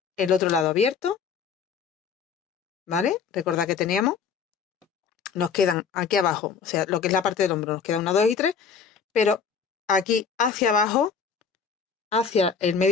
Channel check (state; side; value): quieter; right; 6.3 dB